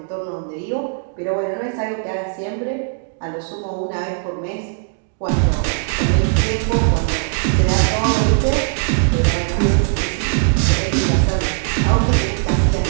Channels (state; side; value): silent; left; digital silence